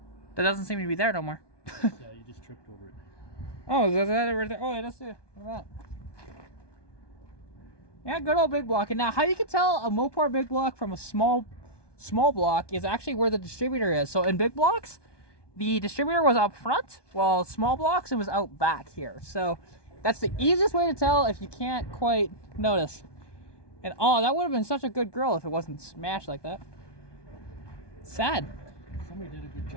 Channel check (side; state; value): right; late; 1.2 ms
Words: That doesn't seem to be there no more. Yeah, you just tripped over it. Oh, is that it right there? Oh, yeah, that's it. Look at that. Yeah, good old big block. And now, how you can tell a Mopar big block from a small block is actually where the distributor is. So in big blocks, the distributor was up front, while small blocks, it was out back here. So that's the easiest way to tell if you can't quite notice. And oh, that would have been such a good grill if it wasn't smashed like that. Sad. Somebody did a good